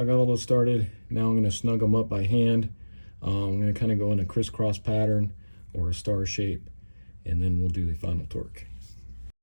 I got all those started. Now I'm going to snug them up by hand. I'm going to kind of go in a crisscross pattern or a star shape, and then we'll do the final torque.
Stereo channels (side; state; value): both; inverted; correlation -1.00